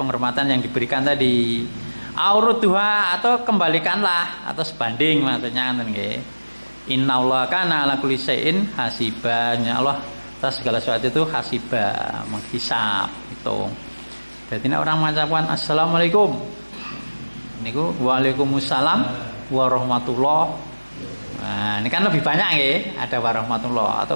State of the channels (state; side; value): inverted; both; correlation -1.00